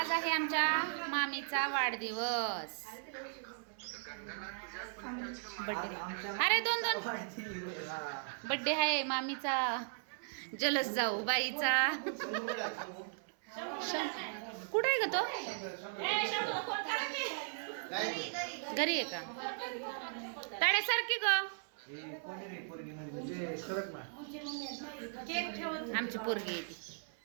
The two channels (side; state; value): left; silent; 53 dB below the other